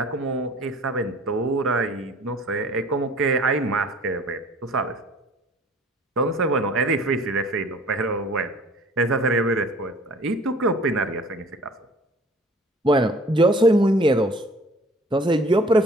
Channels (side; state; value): both; normal; correlation 0.50